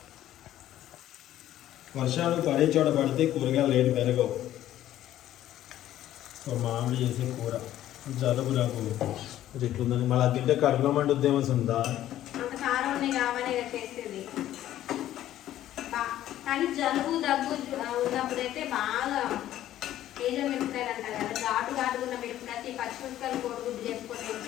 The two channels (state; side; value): quieter; right; 12.9 dB